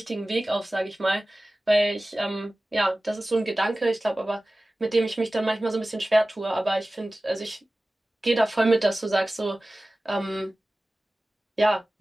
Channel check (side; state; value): both; normal; correlation 0.97